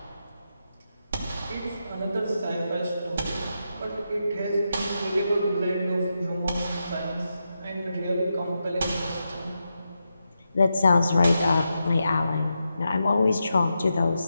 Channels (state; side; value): inverted; both; correlation -0.87